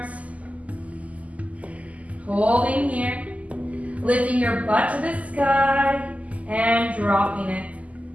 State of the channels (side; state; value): left; late; 0.071 ms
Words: holding here, lifting your butt to the sky, and dropping it.